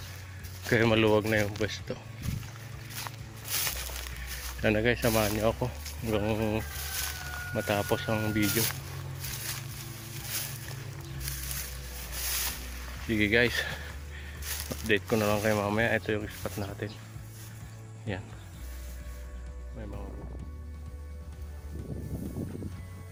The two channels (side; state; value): both; identical; correlation 1.00